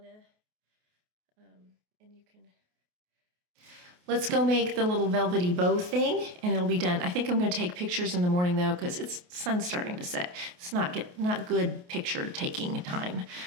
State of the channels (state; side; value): late; left; 28 ms